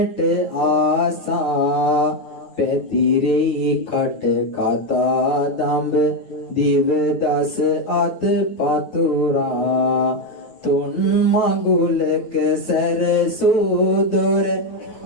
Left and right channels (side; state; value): right; late; 9.3 ms